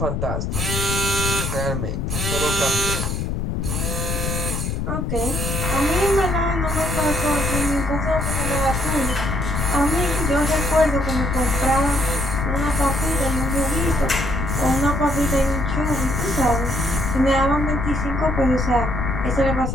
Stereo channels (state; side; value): noise; left; rumble, 2 dB below the sound